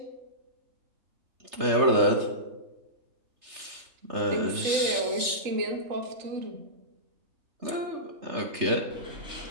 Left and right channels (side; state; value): left; late; 3.3 ms